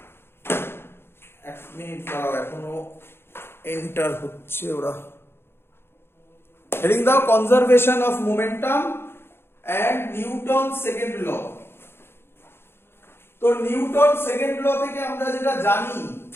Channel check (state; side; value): late; right; 0.11 ms